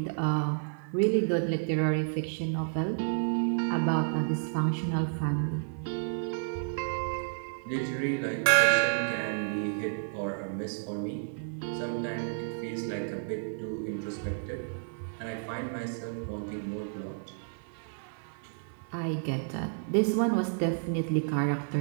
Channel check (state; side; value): silent; left; 57 dB below the other